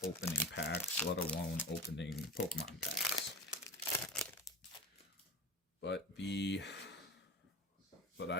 opening packs, let alone opening Pokemon packs. But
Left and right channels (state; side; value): normal; both; correlation 0.31